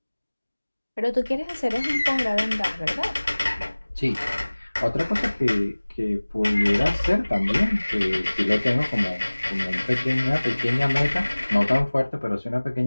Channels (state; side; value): inverted; both; correlation -1.00